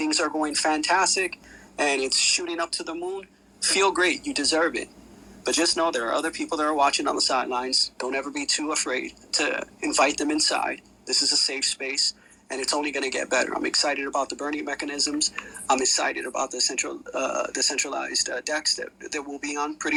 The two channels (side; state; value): both; identical; correlation 1.00